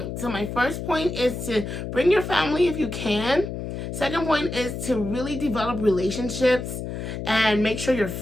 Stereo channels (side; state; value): left; noise; hum, 6 dB below the sound